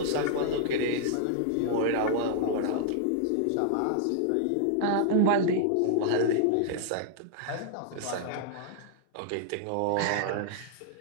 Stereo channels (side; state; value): both; different; correlation -0.01